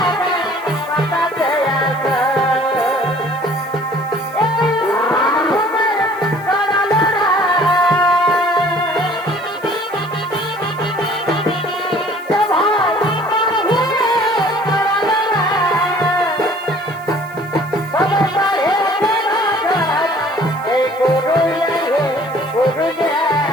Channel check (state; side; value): noise; right; hiss, 25 dB below the sound